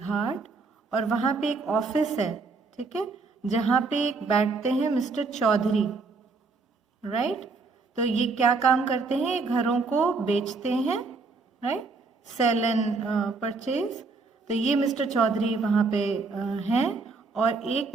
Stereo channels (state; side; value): quieter; left; 4.1 dB